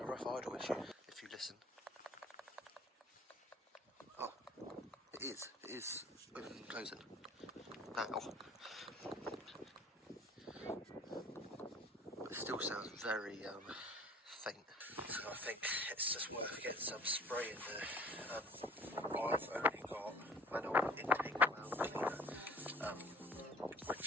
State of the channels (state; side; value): normal; both; correlation 0.50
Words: a rough idle issue, if you listen. Oh, it is opening and closing now. It still sounds very faint, so I think it's just worth getting some spray in there. I've only got manual intake valve cleaner,